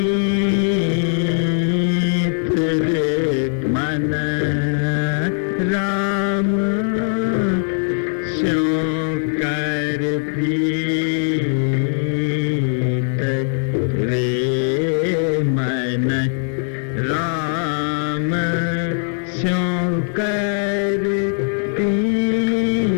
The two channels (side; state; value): right; silent; 63 dB below the other